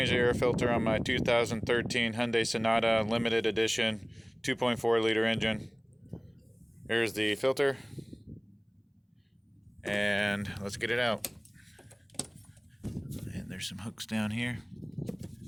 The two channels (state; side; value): identical; both; correlation 1.00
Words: the air filter on my 2013 Hyundai Sonata Limited Edition 2.4 liter engine. Here's the filter, and let's get it out. And there's some hooks down here.